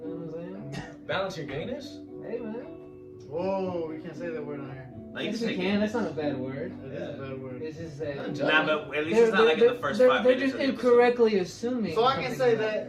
You know what I'm saying? Balance your gayness? Hey, man. Whoa, we can't say that word on here. No, you Yes, can you say can. That's gayness. not a bad word. That is a bad word. It's just that. Not Nah, but at least it's not like in the first 5 They're minutes. just of the episode. incorrectly assuming. So I can something say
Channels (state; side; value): identical; both; correlation 1.00